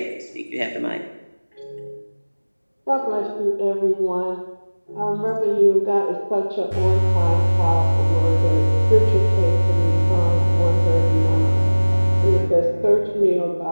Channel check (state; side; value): inverted; both; correlation -1.00